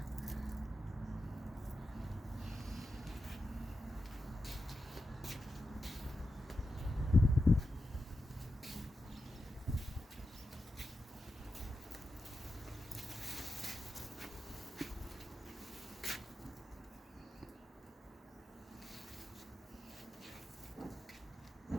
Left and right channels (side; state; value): both; normal; correlation 0.89